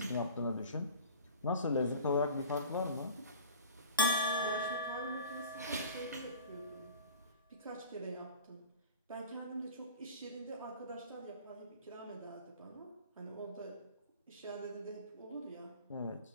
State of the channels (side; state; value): both; inverted; correlation -0.42